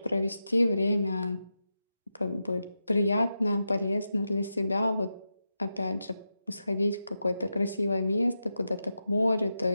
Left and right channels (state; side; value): inverted; both; correlation -0.89